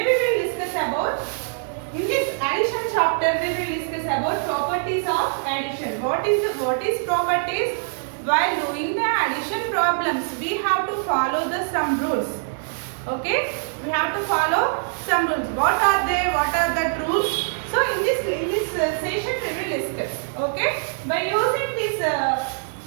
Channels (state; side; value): silent; left; digital silence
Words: we will discuss about, in this addition chapter we will discuss about properties of addition. What is properties? While doing the addition problems, we have to follow the some rules. Okay, we have to follow some rules. What are they? What are the rules? So in this session we will discuss. Okay, by using these